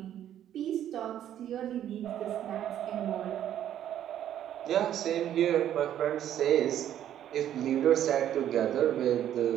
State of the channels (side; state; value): left; quieter; 10.9 dB